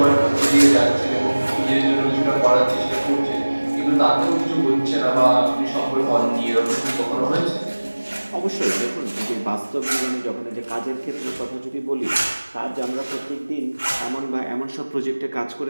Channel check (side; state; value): both; inverted; correlation -1.00